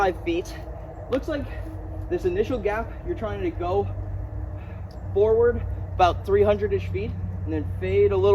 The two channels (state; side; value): identical; both; correlation 1.00